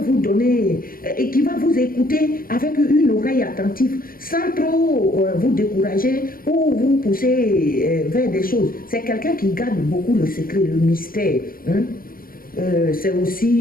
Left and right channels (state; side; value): late; right; 0.42 ms